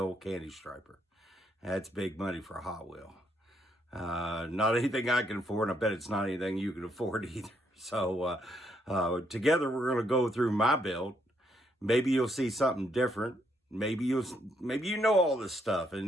candy striper. That's big money for a Hot Wheel. Not anything I can afford, and I bet it's not anything you can afford either. So together we're going to go through my build. Maybe you'll see something different. Maybe you know all this stuff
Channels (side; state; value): both; normal; correlation 0.74